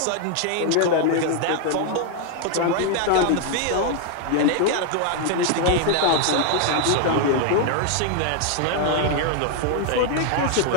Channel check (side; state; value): both; different; correlation 0.00